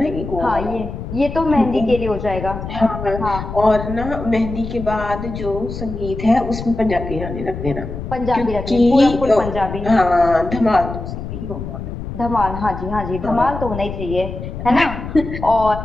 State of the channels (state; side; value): noise; left; rumble, 8 dB below the sound